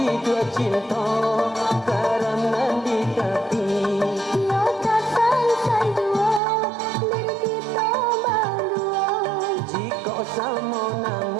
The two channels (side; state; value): left; drops out; at 6.4 s